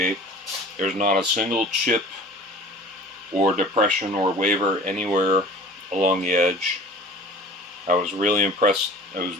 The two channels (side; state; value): both; normal; correlation 0.44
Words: There's not a single chip or depression or waver anywhere along the edge. I was really impressed